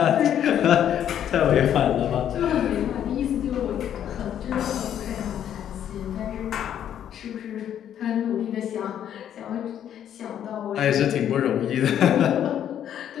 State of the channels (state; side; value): quieter; right; 10.0 dB